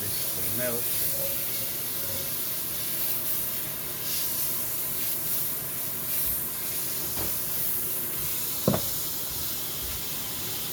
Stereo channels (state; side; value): identical; both; correlation 1.00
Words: this to melt.